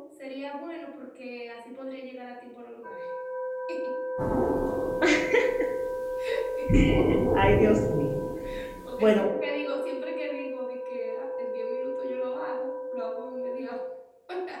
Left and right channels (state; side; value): identical; both; correlation 1.00